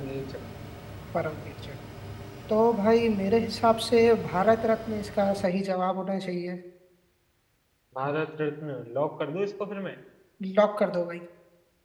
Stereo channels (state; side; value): identical; both; correlation 1.00